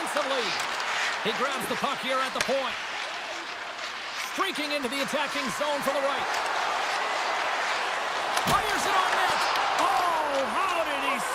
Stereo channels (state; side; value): identical; both; correlation 1.00